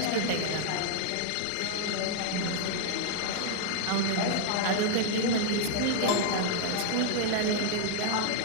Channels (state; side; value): different; both; correlation -0.01